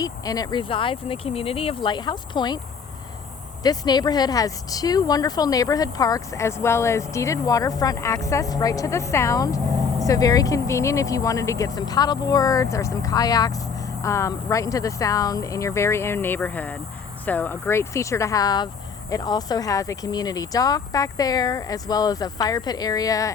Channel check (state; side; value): quieter; right; 5.9 dB